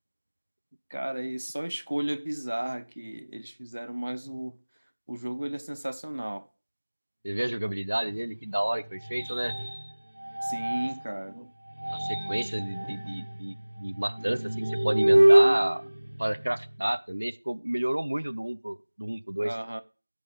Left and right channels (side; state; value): both; inverted; correlation -1.00